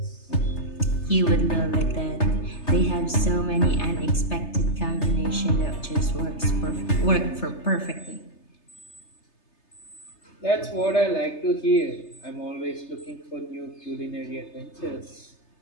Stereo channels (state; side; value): late; right; 3.3 ms